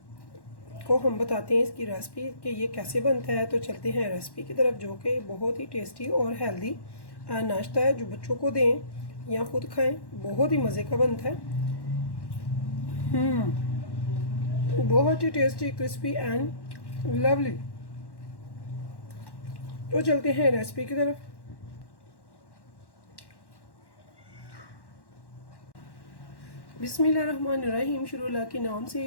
को हम बताते हैं इसकी रेसिपी कि ये कैसे बनता है। तो चलते हैं रेसिपी की तरफ, जो कि बहुत ही टेस्टी और हेल्दी नाश्ता है जो बच्चों को दें या खुद खाएं, बहुत ही मज़े का बनता है। बहुत ही टेस्टी, क्रिस्पी एंड लवली। तो चलते हैं रेसिपी की तरफ। बिस्मिल्लाहिर्रहमानिर्रहीम, शुरू अल्लाह के नाम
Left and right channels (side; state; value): right; late; 1.1 ms